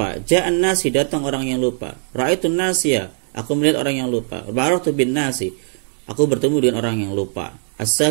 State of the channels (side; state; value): left; silent; digital silence